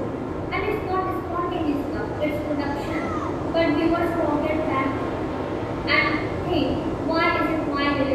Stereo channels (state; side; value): identical; both; correlation 1.00